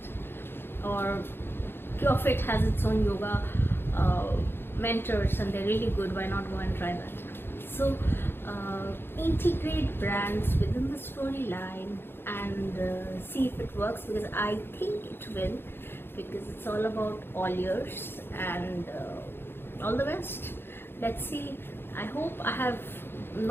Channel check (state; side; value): late; right; 0.11 ms